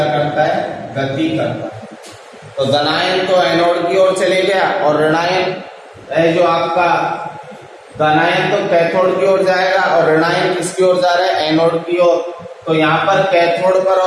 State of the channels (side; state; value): both; identical; correlation 1.00